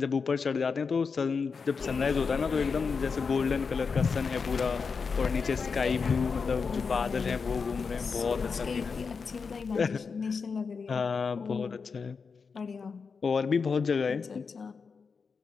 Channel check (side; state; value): right; quieter; 5.3 dB